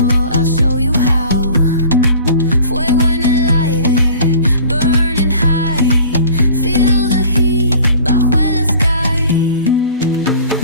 I'll show you how. Fuego en el aire, burning high. Feel the heat bajo el sky.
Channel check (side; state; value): both; inverted; correlation -0.45